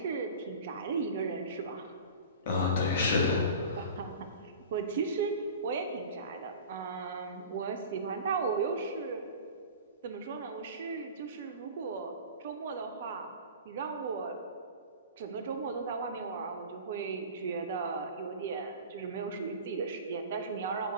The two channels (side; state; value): both; inverted; correlation -0.37